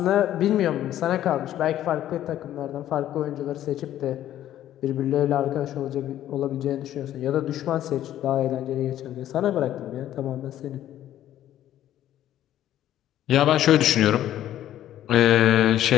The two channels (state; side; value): quieter; right; 12.3 dB